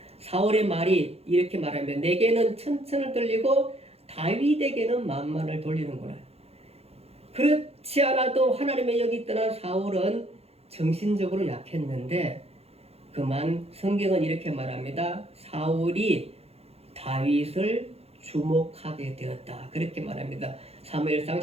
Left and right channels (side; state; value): left; late; 0.29 ms